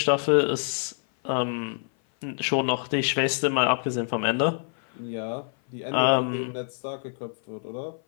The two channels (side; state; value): right; silent; 57 dB below the other